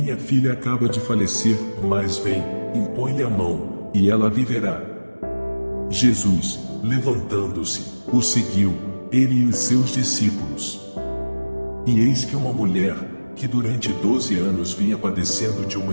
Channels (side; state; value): both; inverted; correlation -1.00